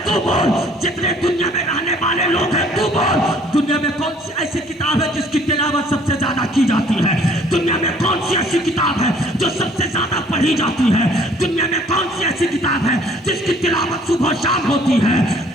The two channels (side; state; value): both; normal; correlation 0.57